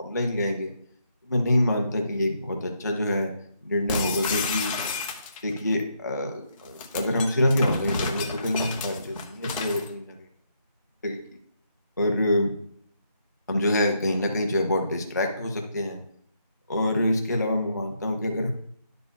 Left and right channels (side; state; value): both; inverted; correlation -0.76